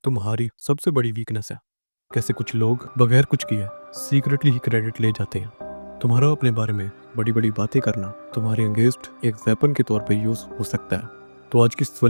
तुम्हारी सबसे बड़ी वीकनेस है। कैसे कुछ लोग बगैर कुछ किए सीक्रेटली ही क्रेडिट ले जाते हैं। तुम्हारा अपने बारे में बड़ी बड़ी बातें करना तुम्हारे अगेंस्ट एक वेपन के तौर पे यूज हो सकता है। तो आज की इस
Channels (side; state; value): both; inverted; correlation -1.00